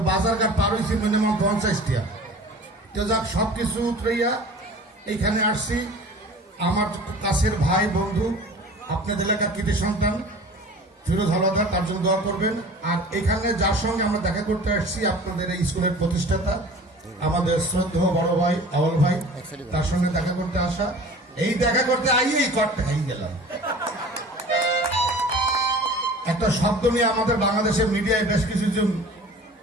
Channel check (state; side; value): normal; both; correlation 0.42